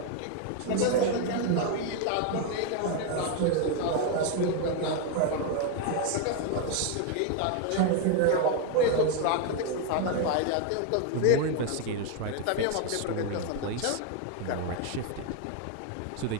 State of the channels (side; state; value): both; different; correlation 0.01